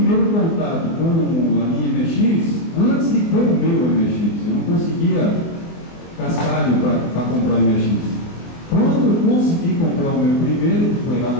contato com a linha MX, antes de ter o meu MX. Eu não conseguia cascalho para comprar MX. Quando eu consegui comprar o meu primeiro, que foi lá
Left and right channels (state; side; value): late; right; 24 ms